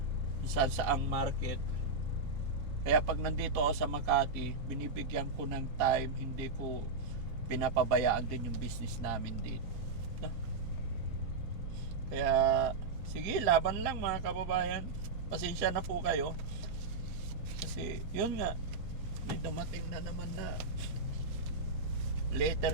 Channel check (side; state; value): left; quieter; 3.7 dB